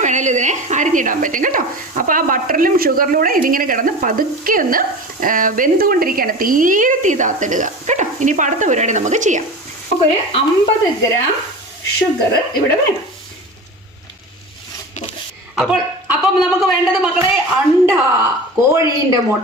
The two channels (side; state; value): both; normal; correlation 0.32